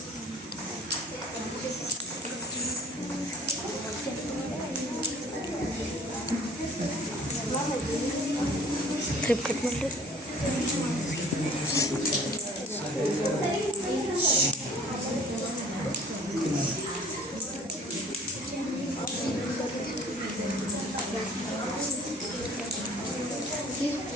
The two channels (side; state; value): both; normal; correlation 0.49